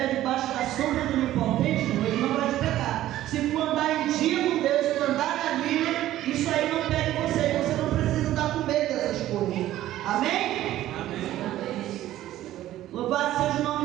debaixo da sombra do Onipotente, ele não vai te pegar. Se for andar em dia com Deus, se for andar na Bíblia, isso aí não pega em você. Você não precisa estar com medo dessas coisas. Amém? Amém. Louvado seja o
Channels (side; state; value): left; quieter; 13.9 dB